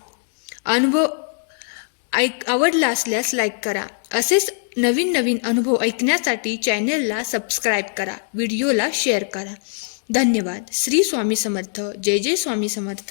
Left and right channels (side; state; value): right; silent; digital silence